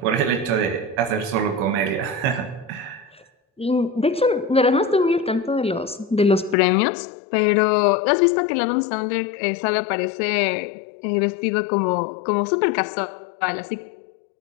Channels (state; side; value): drops out; right; at 6.6 s